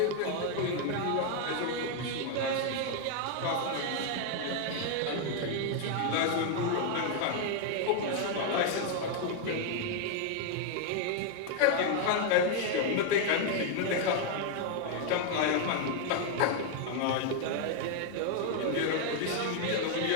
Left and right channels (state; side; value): different; both; correlation 0.00